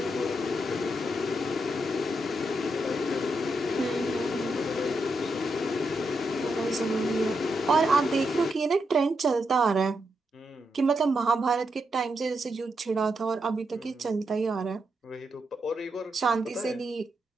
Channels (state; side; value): normal; both; correlation 0.83